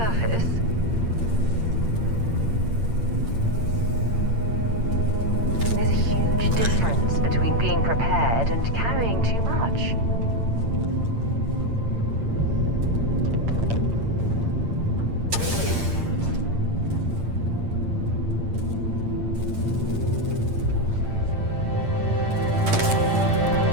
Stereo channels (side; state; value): left; late; 8.8 ms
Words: There's a huge difference between being prepared and carrying too much.